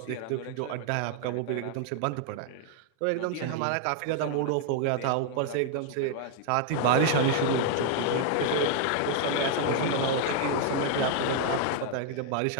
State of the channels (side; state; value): both; different; correlation 0.00